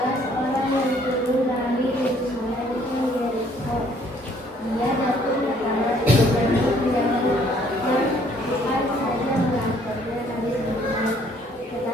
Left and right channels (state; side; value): normal; both; correlation 0.62